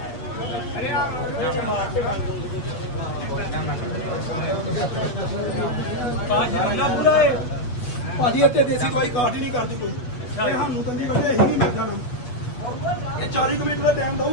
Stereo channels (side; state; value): right; late; 8.1 ms